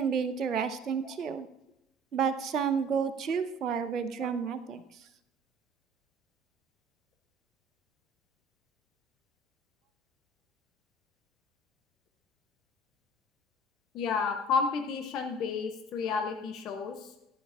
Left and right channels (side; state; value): both; normal; correlation 0.48